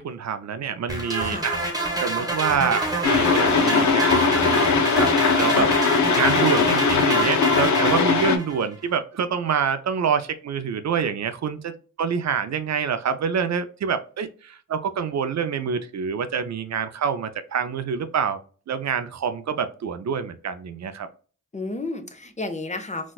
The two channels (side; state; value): both; normal; correlation 0.02